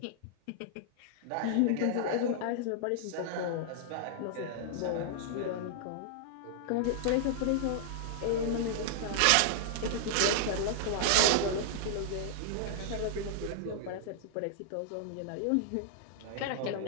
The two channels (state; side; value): different; both; correlation -0.01